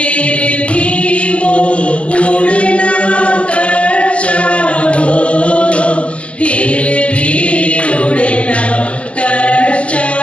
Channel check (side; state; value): right; late; 0.059 ms